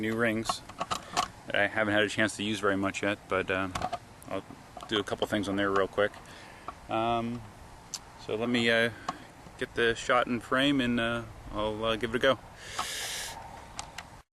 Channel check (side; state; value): both; identical; correlation 1.00